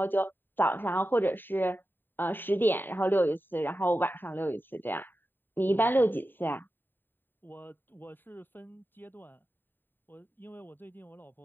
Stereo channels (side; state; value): right; late; 0.094 ms